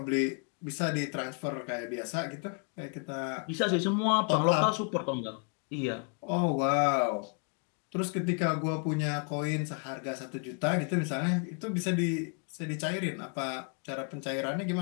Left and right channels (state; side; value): quieter; right; 39.3 dB